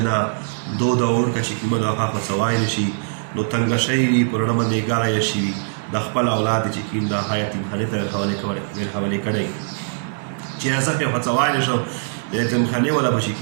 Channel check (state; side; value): silent; left; 59 dB below the other